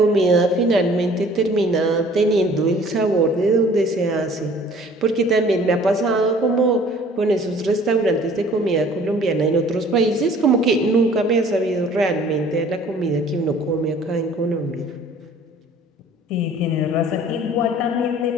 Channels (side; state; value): both; normal; correlation 0.52